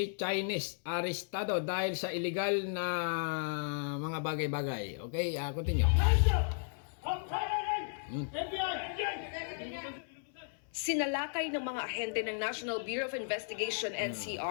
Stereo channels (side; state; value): right; silent; 55 dB below the other